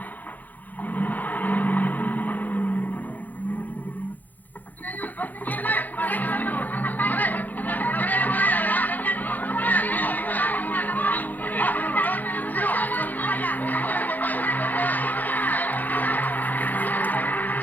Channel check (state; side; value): late; right; 0.083 ms